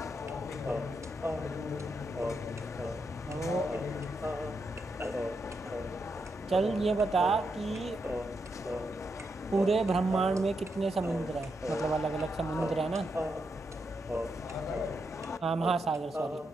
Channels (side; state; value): both; normal; correlation 0.83